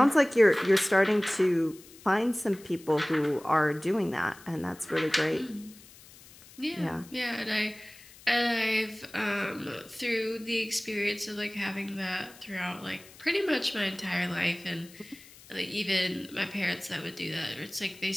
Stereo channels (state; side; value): noise; left; hiss, 22 dB below the sound